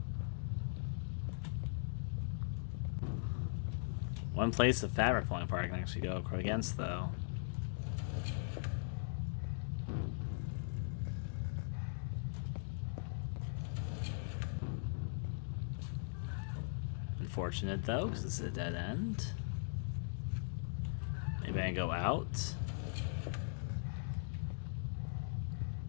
One place the fabric falling apart I can actually go against, though. Unfortunate, though, because this is a dead end. Maybe I can go out.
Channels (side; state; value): right; silent; digital silence